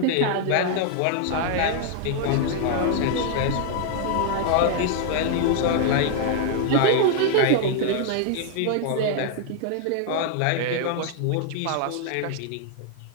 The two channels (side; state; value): both; different; correlation 0.00